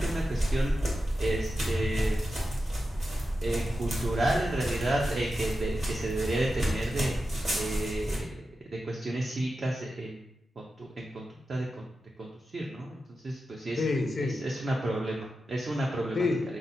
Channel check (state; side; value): normal; both; correlation 0.91